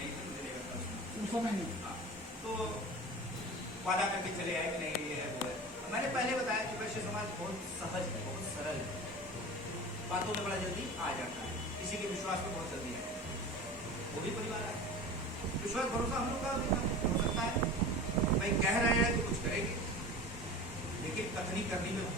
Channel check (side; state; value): both; normal; correlation 0.35